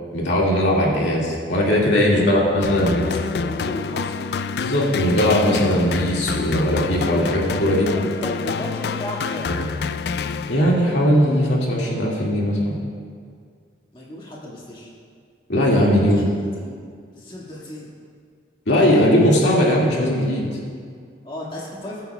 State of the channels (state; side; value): normal; both; correlation 0.47